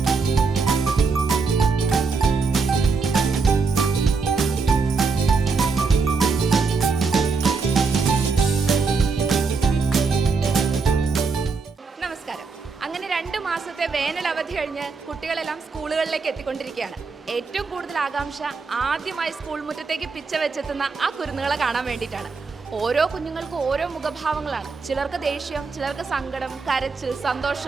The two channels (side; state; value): left; quieter; 4.7 dB